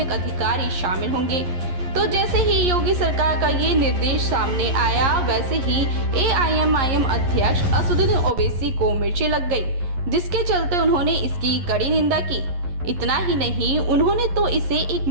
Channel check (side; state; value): left; late; 11 ms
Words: अधिकारी शामिल होंगे। तो जैसे ही योगी सरकार का ये निर्देश सामने आया, वैसे ही एआईएमआईएम अध्यक्ष असदुद्दीन ओवैसी को मिर्ची लग गई, जिसके चलते उन्होंने इसकी कड़ी निंदा की। इतना ही नहीं, उन्होंने तो इसे एक